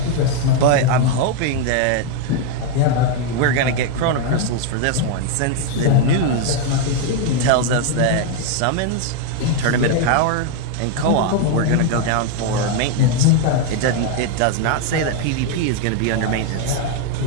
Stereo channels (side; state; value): both; different; correlation 0.01